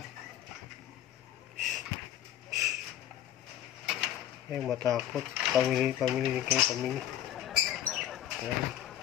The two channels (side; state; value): right; quieter; 11.7 dB